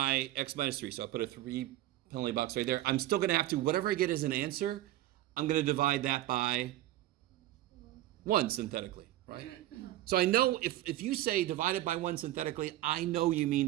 x minus 3, so I put a 3 penalty box right there, I'm still going to have to, whatever I get as an answer, I'm going to divide that by 1 synthetically, right? So I know if you say divided by 1 synthetically, I know you mean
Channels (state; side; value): quieter; left; 14.9 dB